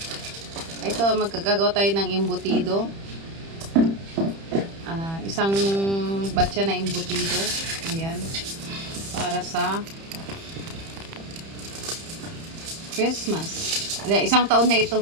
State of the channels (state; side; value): late; left; 30 ms